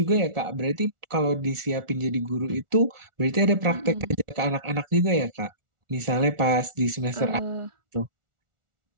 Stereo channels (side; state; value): left; late; 1.4 ms